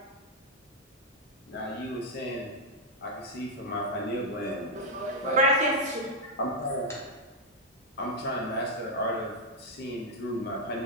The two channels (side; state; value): both; normal; correlation -0.01